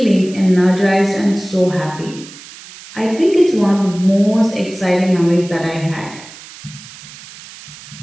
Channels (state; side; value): noise; right; hiss, 18 dB below the sound